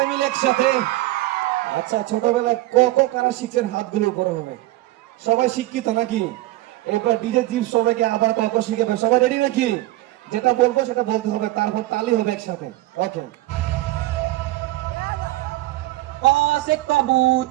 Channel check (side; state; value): left; quieter; 17.6 dB